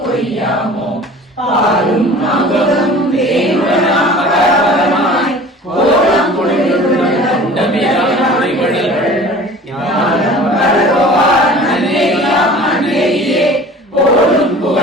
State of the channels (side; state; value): both; normal; correlation 0.43